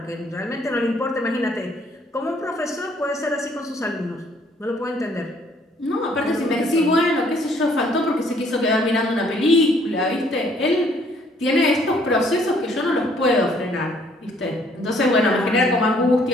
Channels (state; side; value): normal; both; correlation 0.63